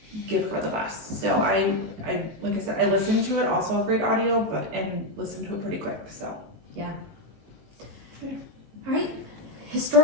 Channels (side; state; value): left; late; 19 ms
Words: give her the best. So I like I said, I listened to it, also a great audio, and listened to it pretty quick. So Yeah. All right.